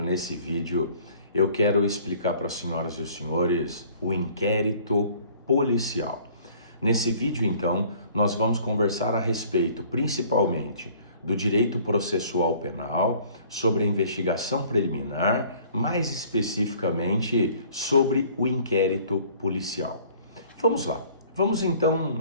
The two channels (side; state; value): both; inverted; correlation -0.54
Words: nesse vídeo, eu quero explicar para as senhoras e os senhores o inquérito policial. Nesse vídeo, então, nós vamos conversar a respeito, principalmente, do direito processual penal, sobre a investigação preliminar, mais especificamente sobre o inquérito policial. Vamos lá. Vamos